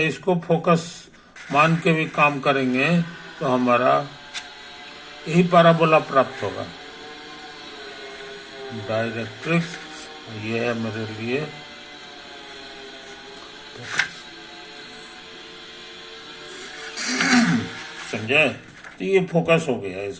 इसको फोकस मान के भी काम करेंगे तो हमारा यही पैराबोला प्राप्त होगा। डायरेक्ट्रिक्स ये है मेरे लिए समझे? तो ये फोकस हो गया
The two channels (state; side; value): identical; both; correlation 1.00